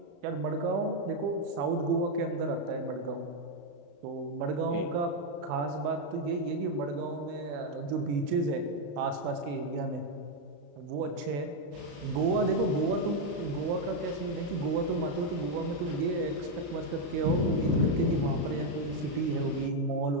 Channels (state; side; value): late; left; 35 ms